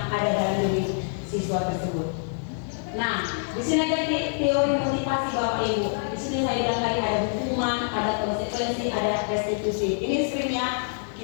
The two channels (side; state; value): right; silent; 61 dB below the other